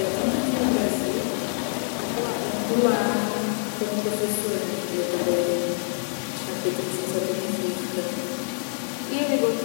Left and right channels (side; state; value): right; silent; 58 dB below the other